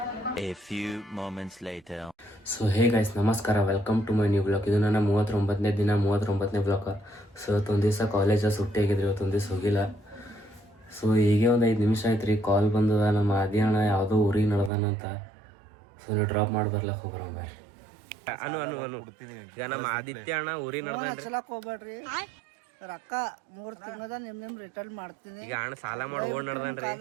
A few moments later. So hey guys ನಮಸ್ಕಾರ, welcome to my new blog. ಇದು ನನ್ನ 39ನೇ ದಿನ, 39ನೇ ಬ್ಲಾಗ್. ಸೊ ಇವತ್ತೊಂದು ದಿವಸ ಕಾಲೇಜ ಸುಟ್ಟಿ ಆಗಿದ್ರಿ, ಇವತ್ತೊಂದು ದಿವಸ ಹೋಗಿಲ್ಲ. ಸೊ ಹೀಗೆ ಒಂದು 5 ನಿಮಿಷ ಆಯ್ತು ರೀ, ಕಾಲ್ ಬಂದದ. ನಮ್ಮ ಆದಿ ಅಣ್ಣ ಯಾವುದೋ ಊರಿಗೆ ನಡೆದಾನಂತ. ಸೊ ನೀವು ಡ್ರಾಪ್ ಮಾಡಿ ಬರ್ಲಕ್ಕೆ ಹೋಗ್ಬರ ಬರ್ರಿ. ಅನು ಅನು ಅನು ಈಗ ನಮ್ಮ ಆದಿತ್ಯ ಅಣ್ಣ ಊರಿಗೆ ನಡೆದಾನ್ರಿ. ಹೋಗ್ಬೇಡ್ರಿ, ರೊಕ್ಕ 3 ತಿಂಗಳದ ನಿಮ್ ರಿಟರ್ನ್ ಮಾಡ್ತೀನಿ. ಈಗ ಅಣ್ಣ ಸಾಲ ಮಾಡಿ ಓಡ್ ನಡೆದಾನ್ರಿ.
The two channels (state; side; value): drops out; left; at 14.7 s